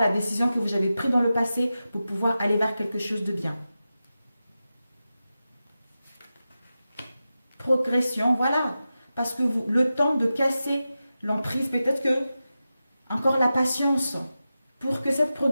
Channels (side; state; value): both; inverted; correlation -0.92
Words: la décision que vous avez prise dans le passé pour pouvoir aller vers quelque chose de bien. Progression, voilà. Parce que le temps de casser l'emprise, peut-être que encore la patience. Pour que cette